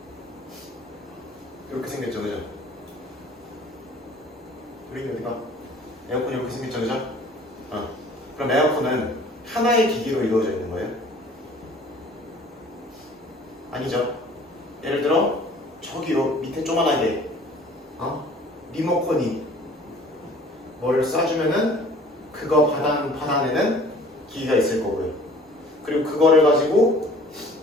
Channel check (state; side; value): normal; both; correlation 0.51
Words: 이렇게 생겼죠, 그죠? 우리 어디가? 에어컨이 이렇게 생겼죠, 그죠? 그럼 에어컨은 하나의 기기로 이루어져 있는 거예요? 아니죠. 예를 들어 저기요 밑에 조만하게 리모컨이 뭐를 쏴주면은 그거 받아내는 기기가 있을 거고요. 그리고 그거를 가지고